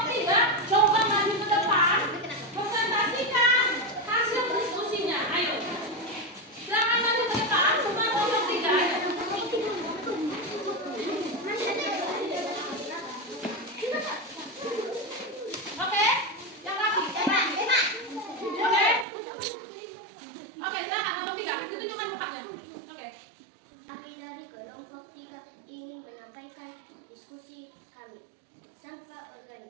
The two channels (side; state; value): left; drops out; at 19.1 s